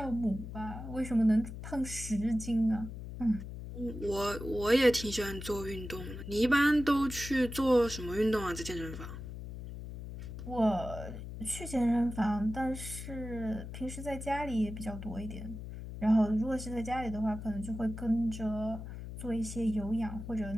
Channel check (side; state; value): left; noise; hum, 9 dB below the sound